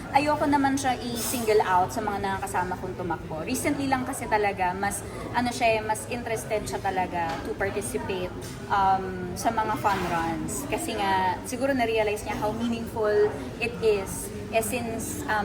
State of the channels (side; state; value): both; identical; correlation 1.00